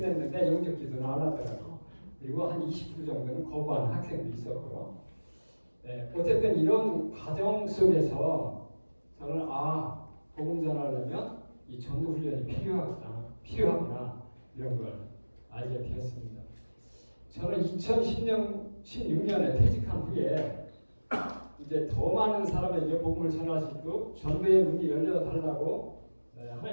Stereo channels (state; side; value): inverted; both; correlation -1.00